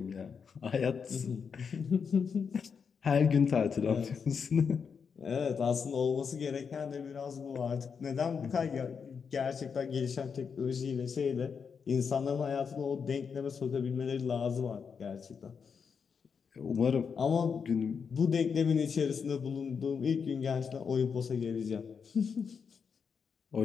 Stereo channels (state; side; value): quieter; right; 6.2 dB